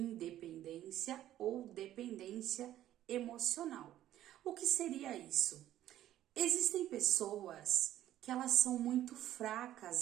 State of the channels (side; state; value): left; quieter; 12.8 dB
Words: ou dependência emocional. O que seria isso? Existem pessoas que elas são muito